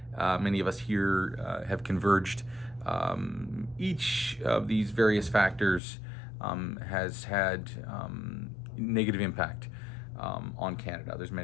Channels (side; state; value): right; drops out; at 5.8 s